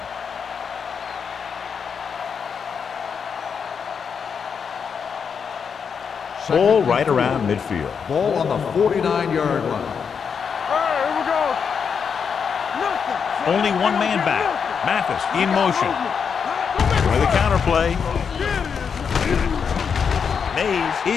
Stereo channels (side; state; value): right; quieter; 6.5 dB